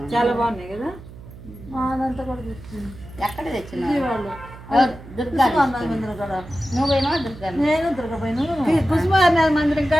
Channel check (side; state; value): right; noise; hum, 17 dB below the sound